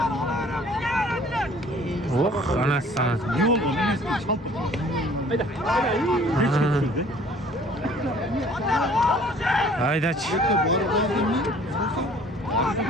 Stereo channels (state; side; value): normal; both; correlation 0.53